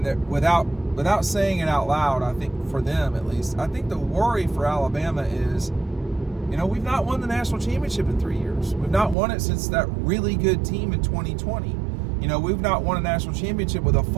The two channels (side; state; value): left; drops out; at 9.2 s